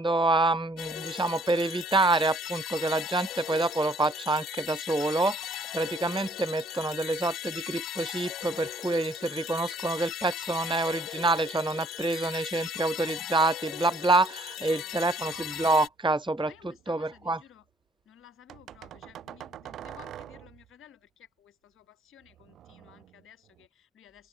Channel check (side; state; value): both; normal; correlation 0.62